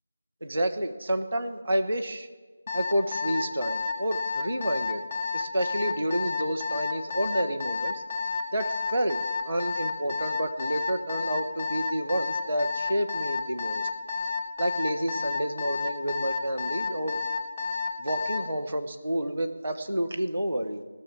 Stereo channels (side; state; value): both; inverted; correlation -0.90